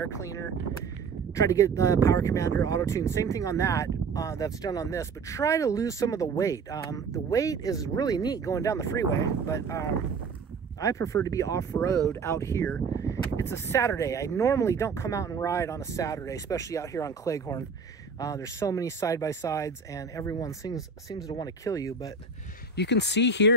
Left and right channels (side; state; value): left; quieter; 4.9 dB